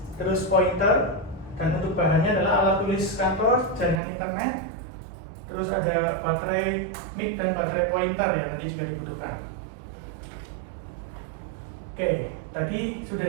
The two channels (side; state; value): left; drops out; at 4.0 s